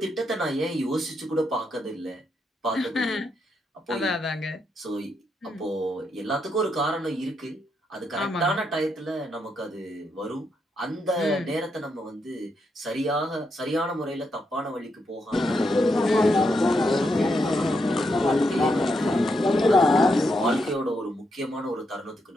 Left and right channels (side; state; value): both; normal; correlation 0.81